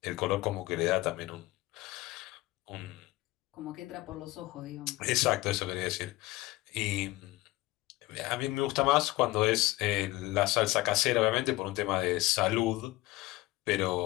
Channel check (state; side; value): quieter; right; 19.5 dB